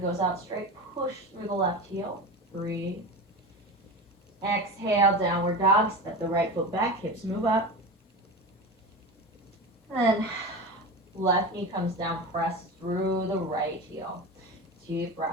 goes out straight. Push through the left heel. Breathe. Exhale, downward dog. Step the right foot back. Hips move up. Then left knee comes down, press through the right heel. Deep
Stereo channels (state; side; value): normal; both; correlation 0.27